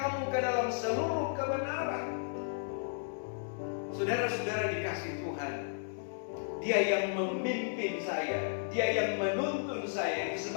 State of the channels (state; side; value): silent; right; digital silence